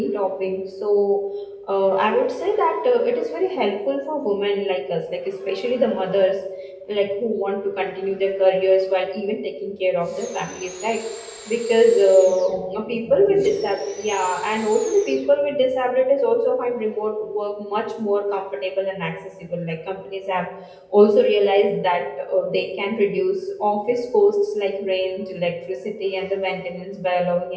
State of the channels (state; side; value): identical; both; correlation 1.00